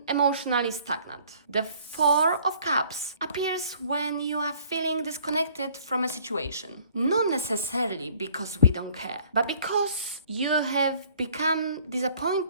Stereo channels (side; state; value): both; inverted; correlation -0.57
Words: emotionally stagnant. The Four of Cups appears when you are feeling disconnected from a situation. Not necessarily because we don't care, but because you have become